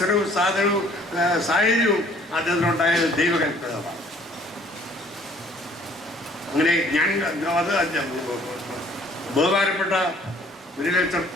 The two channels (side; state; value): both; normal; correlation 0.57